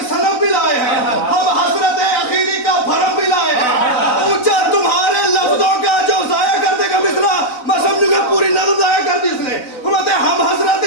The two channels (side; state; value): right; late; 4.0 ms